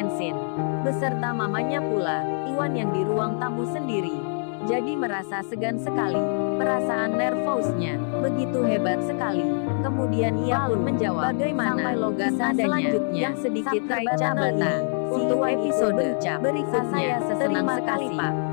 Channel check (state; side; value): silent; right; digital silence